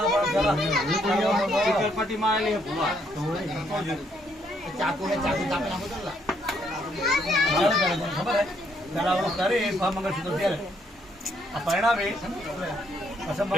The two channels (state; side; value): normal; both; correlation 0.71